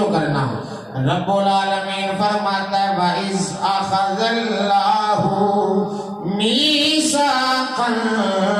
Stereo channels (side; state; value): both; identical; correlation 1.00